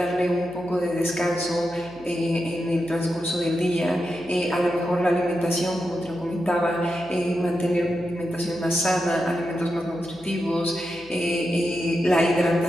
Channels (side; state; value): right; noise; hum, 23 dB below the sound